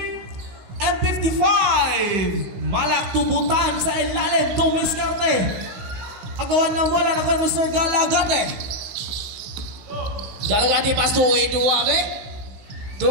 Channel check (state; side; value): late; left; 16 ms